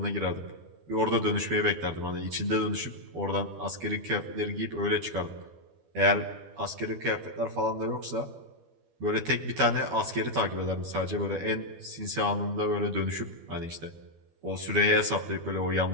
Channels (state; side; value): late; left; 12 ms